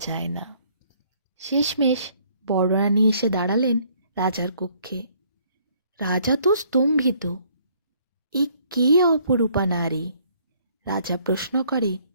না। শেষমেশ বড় রানী এসে দাঁড়ালেন রাজার কক্ষে। রাজা তো স্তম্ভিত। এ কে অপরূপা নারী? রাজা প্রশ্ন করে,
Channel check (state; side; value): inverted; both; correlation -0.63